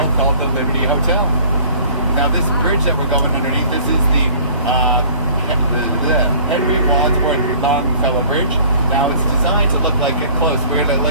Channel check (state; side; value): inverted; both; correlation -0.51